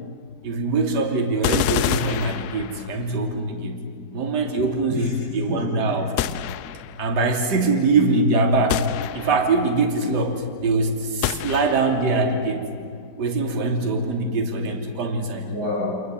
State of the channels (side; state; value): left; late; 3.6 ms